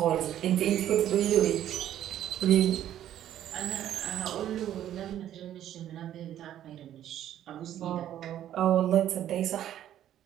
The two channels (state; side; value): quieter; left; 11.5 dB